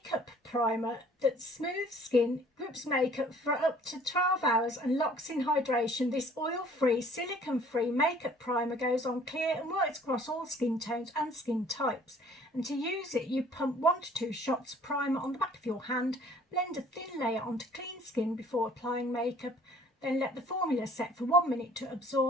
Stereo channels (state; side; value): normal; both; correlation 0.54